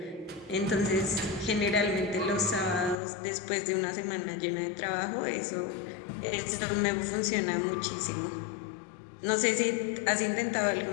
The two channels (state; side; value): drops out; right; at 3.0 s